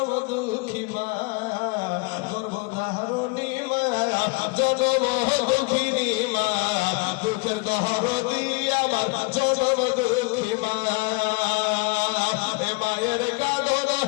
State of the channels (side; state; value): right; quieter; 27.8 dB